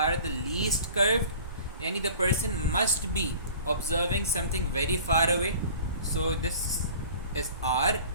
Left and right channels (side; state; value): both; inverted; correlation -0.44